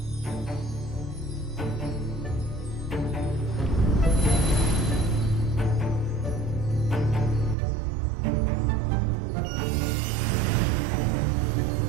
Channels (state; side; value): drops out; left; at 7.6 s